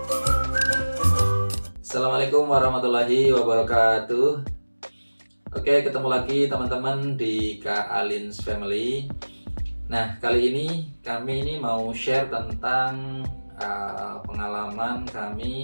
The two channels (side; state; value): both; inverted; correlation -1.00